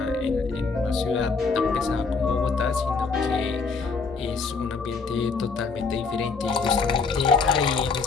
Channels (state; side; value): quieter; right; 4.6 dB